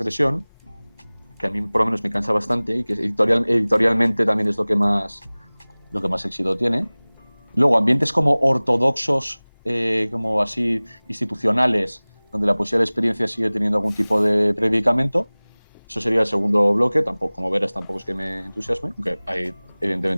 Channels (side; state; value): both; inverted; correlation -1.00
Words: que a mí por lo menos me cansa bastante y que editorialmente también es lo que más éxito tiene. Luego, ambientes como ortodoxos, como así institucionales, donde la poesía de la experiencia sigue teniendo algún tipo de predicamento. Eso sería el segundo bloque. Tampoco, como verás, tampoco es que me entusiasme, aunque hay